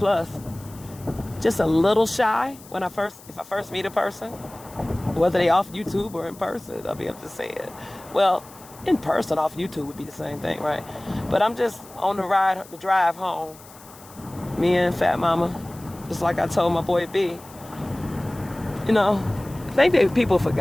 Just a little shy if I first meet a person, whether they off YouTube or in person, I'll be able to say it. Well, in person off YouTube would be the same thing, right? But I'm just on the drive home, me and Fat Mama, just like I told my boy B. I think people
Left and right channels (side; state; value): left; noise; hiss, 21 dB below the sound